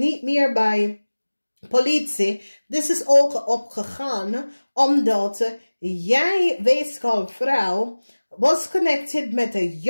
meer bij politie, dit is ook opgegaan, omdat jij, weegschaal vrouw, was connected met een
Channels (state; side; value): inverted; both; correlation -1.00